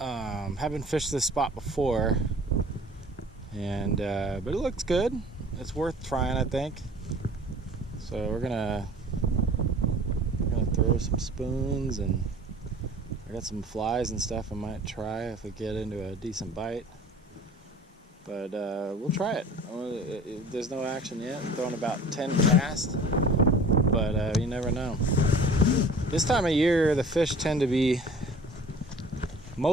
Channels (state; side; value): normal; both; correlation 0.46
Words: fished this spot before, and but it looks good. It's worth trying, I think. So we're gonna throw some spoons, and I got some flies and stuff I might try if we get into a decent bite. But we'll try it. There's no action yet. I'm throwing about 10 casts, but you never know. This time of year, the fish tend to be